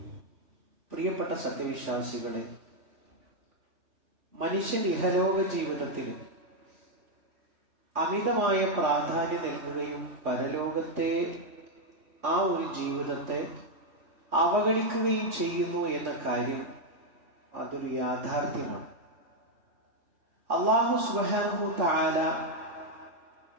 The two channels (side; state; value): left; late; 3.5 ms